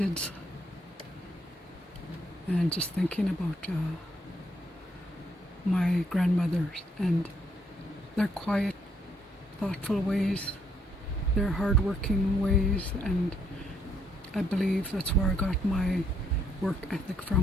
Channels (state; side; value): normal; both; correlation 0.72